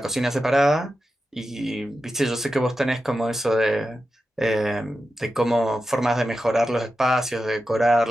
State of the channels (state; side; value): normal; both; correlation 0.91